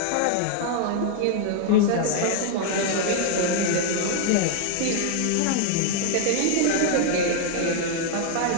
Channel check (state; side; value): different; both; correlation 0.00